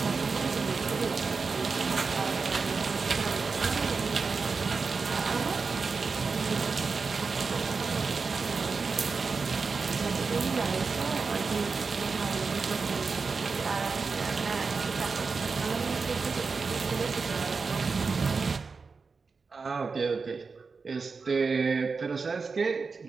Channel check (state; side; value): quieter; left; 4.7 dB